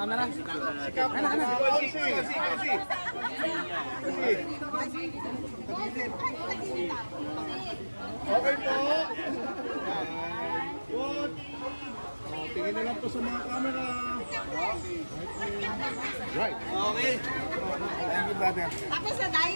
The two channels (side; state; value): both; inverted; correlation -1.00